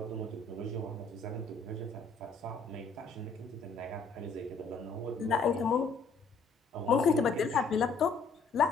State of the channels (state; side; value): quieter; right; 4.3 dB